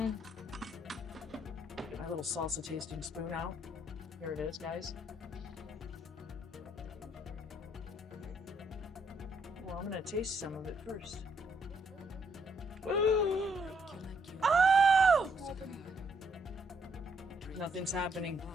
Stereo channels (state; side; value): normal; both; correlation 0.72